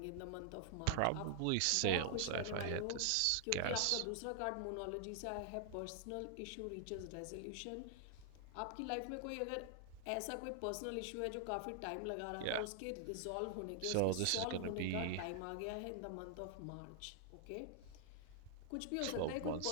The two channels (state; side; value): different; both; correlation 0.00